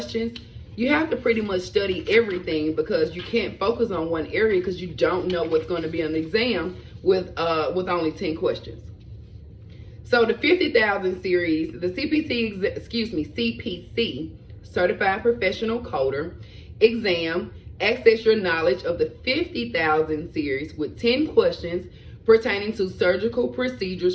you have to pretty much study everything, because you can't focus on one area because you don't know what's going to be on the exam with only 10 questions. So the 50,000 series, the CPC, Certified Professional Coder exam, access your knowledge of the 50,000 series with 10 questions pertaining to surgical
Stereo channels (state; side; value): identical; both; correlation 1.00